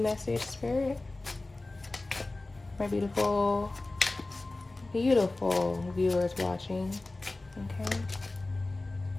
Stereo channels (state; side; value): quieter; right; 3.0 dB